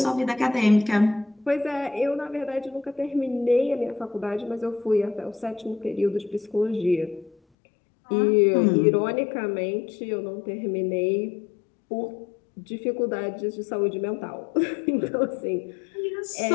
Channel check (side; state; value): right; drops out; at 7.4 s